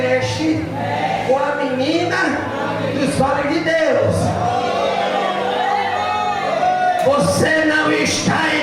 com a menina dos olhos de Deus. Você não está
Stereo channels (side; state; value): both; identical; correlation 1.00